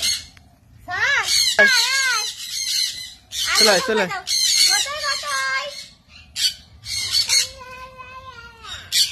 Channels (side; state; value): both; identical; correlation 1.00